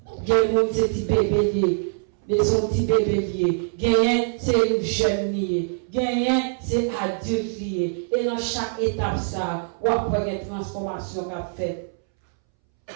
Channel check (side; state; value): left; silent; 63 dB below the other